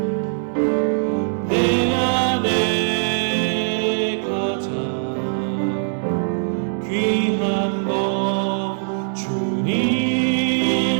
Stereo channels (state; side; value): silent; left; digital silence